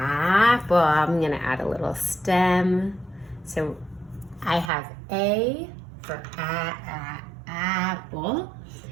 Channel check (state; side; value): drops out; left; at 4.7 s